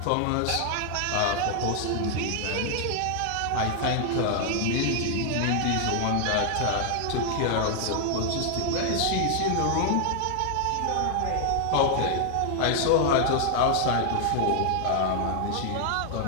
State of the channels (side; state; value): both; different; correlation 0.00